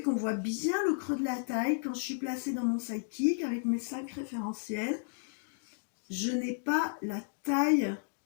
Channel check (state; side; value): silent; right; digital silence